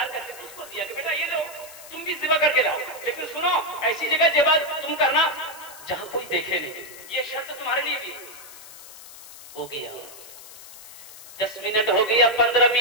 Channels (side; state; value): left; noise; hiss, 17 dB below the sound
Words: करते थे, उसको दिया कि बेटा ये लो, तुम भी ज़िबा करके लाओ, लेकिन सुनो ऐसी जगह ज़िबा तुम करना जहां कोई देखे नहीं। ये शर्त तुम्हारे लिए भी हो गया। 10 मिनट हो गया, 15